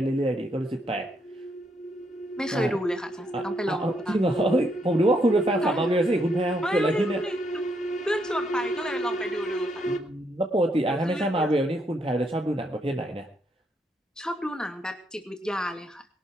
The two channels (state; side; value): normal; both; correlation 0.76